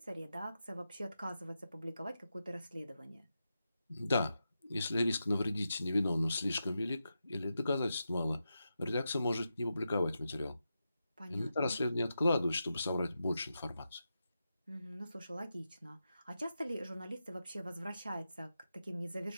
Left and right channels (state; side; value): inverted; both; correlation -0.89